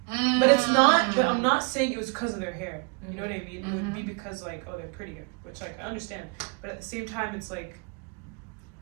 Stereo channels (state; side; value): quieter; left; 31.6 dB